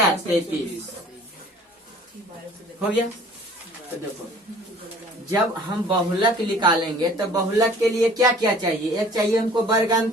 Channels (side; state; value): both; normal; correlation 0.51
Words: 33 हो गया। तो देखो जब हम बहुलक निकालेंगे तो बहुलक के लिए क्या क्या चाहिए, एक चाहिए हमको वर्ग